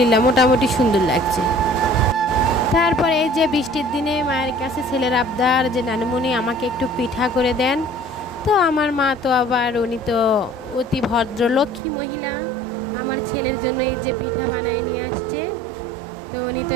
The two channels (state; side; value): drops out; left; at 11.8 s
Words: মোটামুটি সুন্দর লাগছে। তারপরে এই যে বৃষ্টির দিনে মায়ের কাছে ছেলের আবদার যে নানুমণি আমাকে একটু পিঠা করে দেন। তো আমার মা তো আবার, উনি তো অতি ভদ্র লক্ষ্মী মহিলা, আমার ছেলের জন্য এই যে পিঠা বানায় নিয়ে আসছে। তো উনি তো